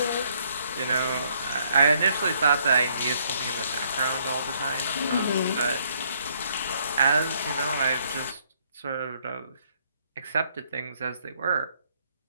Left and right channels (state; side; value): inverted; both; correlation -0.68